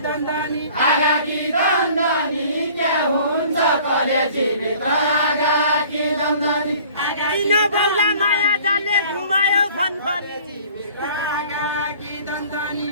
दन्दनी आगाकी दन्दनी क्या हुन्छ कलेजी भित्र आगाकी दन्दनी किन बौला माया जाले घुमायो फनफनी आगाकी दन्दनी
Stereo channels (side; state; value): both; inverted; correlation -0.50